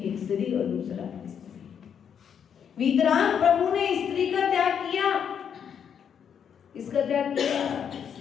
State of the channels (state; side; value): quieter; right; 7.9 dB